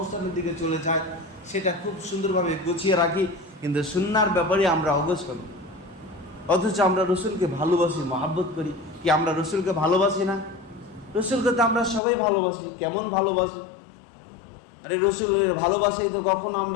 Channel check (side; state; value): right; drops out; at 12.0 s